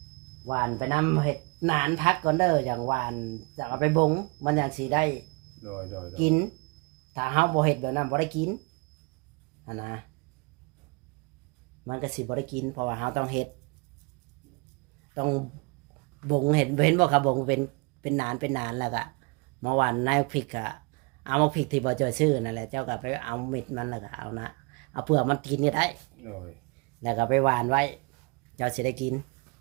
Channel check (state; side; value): quieter; left; 29.6 dB